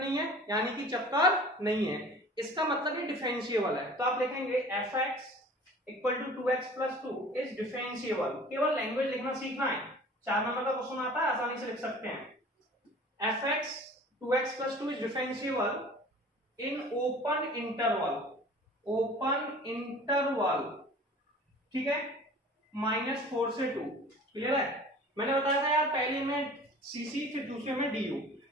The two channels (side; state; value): both; normal; correlation 0.45